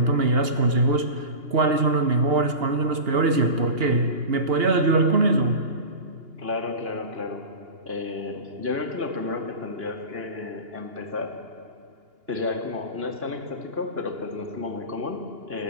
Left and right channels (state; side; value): late; left; 2.8 ms